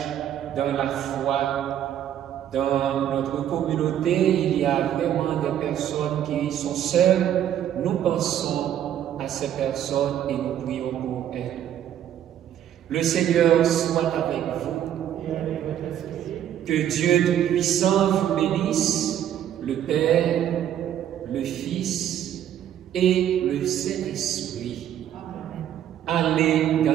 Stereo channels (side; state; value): left; quieter; 10.6 dB